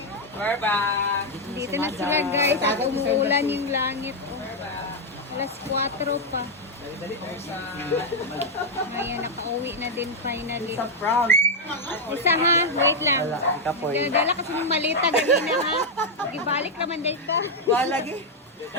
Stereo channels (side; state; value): both; normal; correlation 0.00